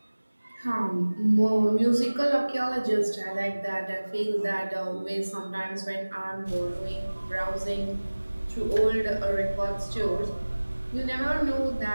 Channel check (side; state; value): both; inverted; correlation -1.00